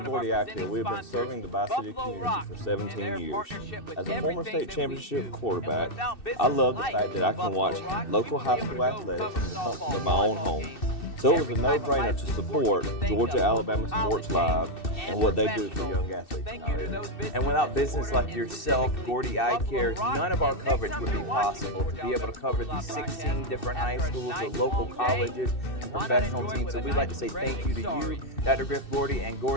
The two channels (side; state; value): right; late; 2.6 ms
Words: Gordy Eye Care, we have been serving the Bi-City community for 17 years. As a former state championship quarterback, I love the fact that I can watch local high school athletics from the comfort of my own home. So it was a no-brainer to support Georgia Alabama Sports Live and what they do for young athletes in our area. And without business like yourself, Gordy Eye Care, none of our coverage would be possible to be able to cover these 16 different high schools, the local colleges, and professional teams. So we'd like to say thank you to you, Dr. Griff Gordy and